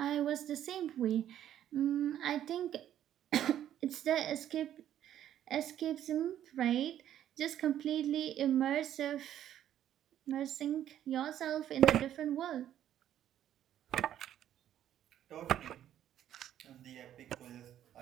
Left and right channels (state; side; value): quieter; left; 11.1 dB